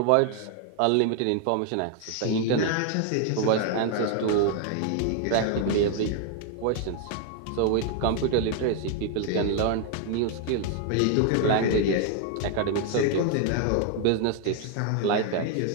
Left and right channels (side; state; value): both; different; correlation 0.00